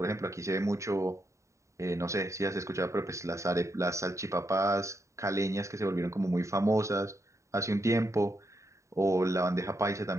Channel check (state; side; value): late; left; 0.14 ms